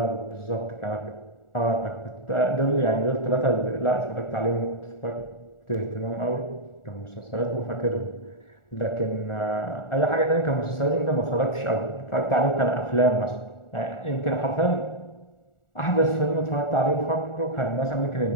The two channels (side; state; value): right; late; 1.4 ms